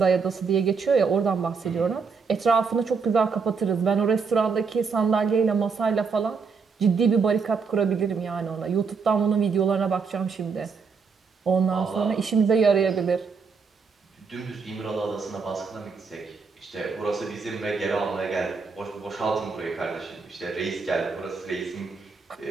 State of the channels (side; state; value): left; quieter; 5.2 dB